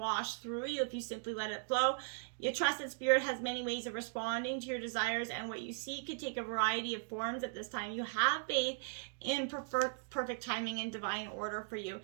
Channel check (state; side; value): silent; left; digital silence